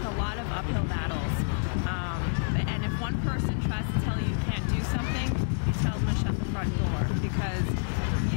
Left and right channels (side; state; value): right; silent; digital silence